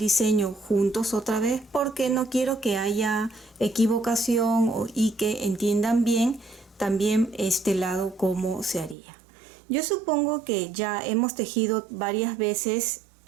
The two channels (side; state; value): left; drops out; at 9.0 s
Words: juntos otra vez porque no quiero que haya equivocación y que entiendan bien también este lado cómo se haría. Yo supongo que ya hemos tejido varias veces